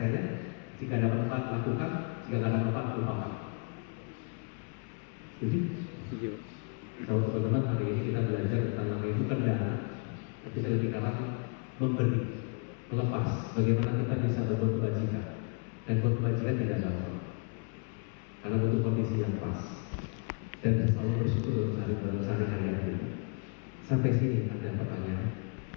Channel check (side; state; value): right; quieter; 37.2 dB